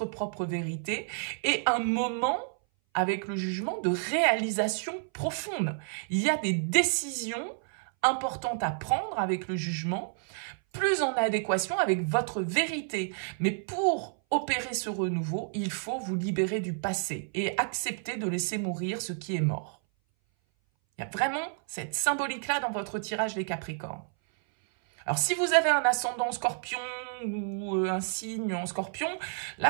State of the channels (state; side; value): silent; left; 58 dB below the other